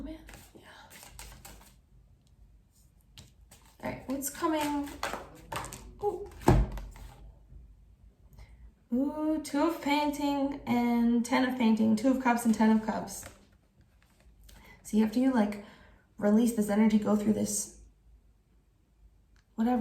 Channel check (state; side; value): identical; both; correlation 1.00